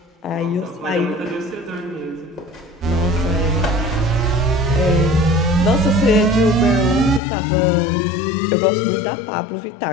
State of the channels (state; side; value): drops out; right; at 7.2 s